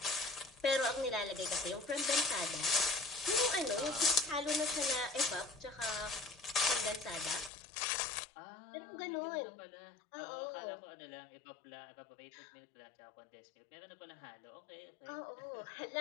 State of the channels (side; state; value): right; drops out; at 7.5 s